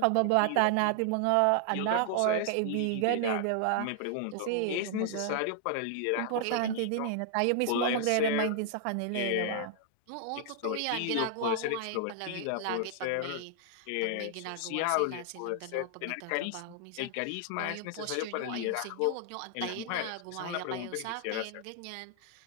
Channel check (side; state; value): both; different; correlation -0.01